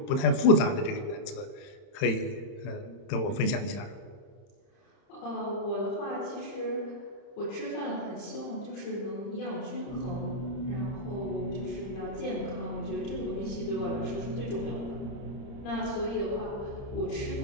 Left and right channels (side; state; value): right; late; 31 ms